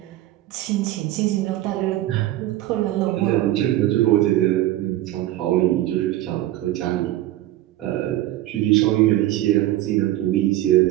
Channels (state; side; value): quieter; left; 15.0 dB